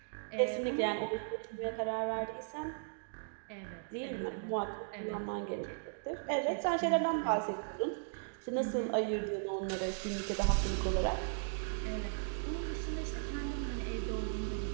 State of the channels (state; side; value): silent; left; digital silence